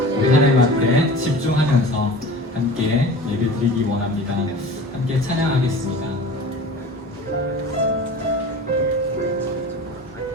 우리 하나님한테 집중하면서 함께 예배드리기 원합니다. 함께 찬양하겠습니다.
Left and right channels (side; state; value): both; normal; correlation 0.38